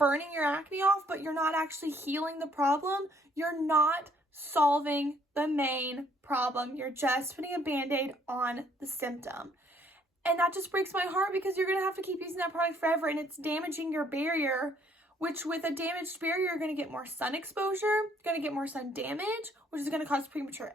your acne off, but you're not actually healing the problem. You're not solving the main problem. You're just putting a band-aid on the symptom. And that just breaks my heart because you're going to have to keep using that product forever and it's damaging your barrier, which with a damaged barrier, you're going to get more sun exposure, going to get more sun damage, which is going to cause premature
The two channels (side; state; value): both; normal; correlation 0.64